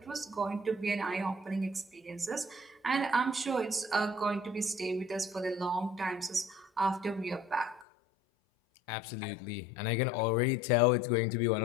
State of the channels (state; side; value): drops out; right; at 7.9 s